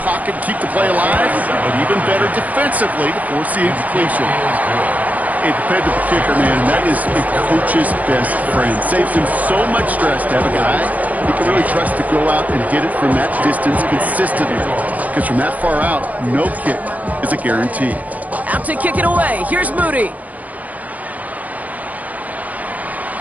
pocket, keep the play alive, but even better defensively to force the incompletion. A dependable kicker, man, that is a coach's best friend. Saves him so much stress to have a guy he can really trust to go out and hit it from that distance consistently. Because from that far out, no kick is a guarantee. Out to kick it away. Here's Moody.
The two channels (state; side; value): late; left; 0.074 ms